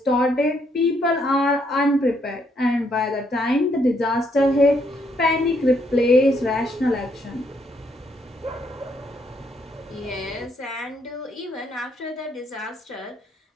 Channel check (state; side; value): normal; both; correlation 0.72